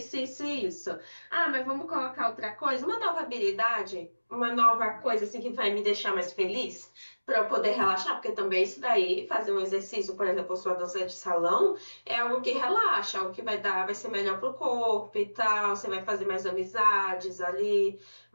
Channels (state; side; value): inverted; both; correlation -1.00